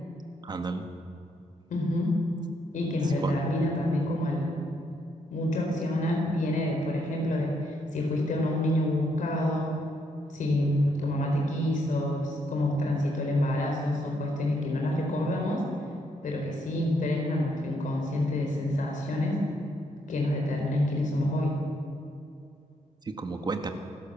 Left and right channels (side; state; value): both; normal; correlation 0.74